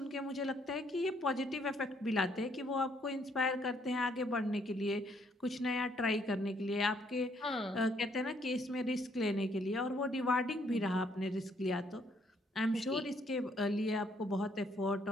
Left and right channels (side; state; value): both; normal; correlation 0.68